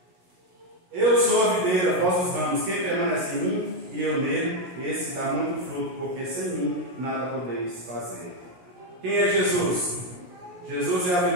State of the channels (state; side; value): late; left; 17 ms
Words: eu sou a videira, vós os ramos. Quem permanece em mim e eu nele, esse dá muito fruto, porque sem mim nada podeis fazer. Quem é Jesus? Jesus é a